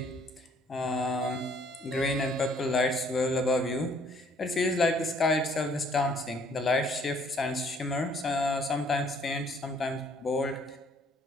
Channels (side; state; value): both; normal; correlation 0.62